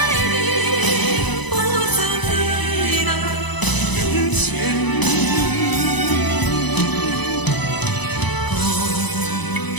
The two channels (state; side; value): late; right; 1.0 ms